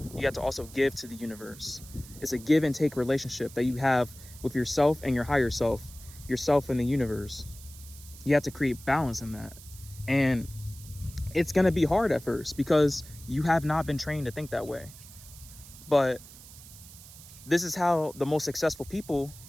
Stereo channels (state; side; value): noise; right; hiss, 18 dB below the sound